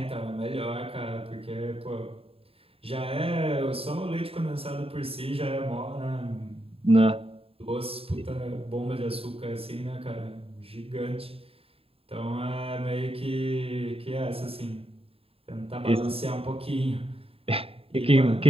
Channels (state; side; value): late; left; 0.27 ms